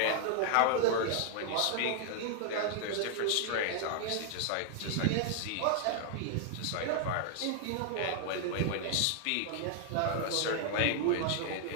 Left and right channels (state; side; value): different; both; correlation -0.01